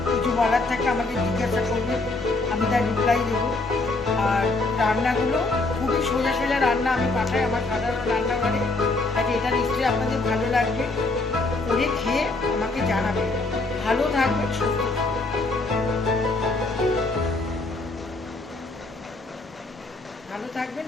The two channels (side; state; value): right; quieter; 3.2 dB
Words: কিছু বলার থাকে আমাকে জিজ্ঞাসা করবেন, আমি তার রিপ্লাই দেবো। আর রান্নাগুলো খুবই সোজা সোজা রান্না আমি পাঠাই আমার সাধারণ রান্নাঘরে। তাই এটা নিশ্চয়ই আপনাদের ভালো লাগবে, করে খেয়ে আমাকে জানাবেন। ভালো থাকবেন, সুস্থ থাকবেন,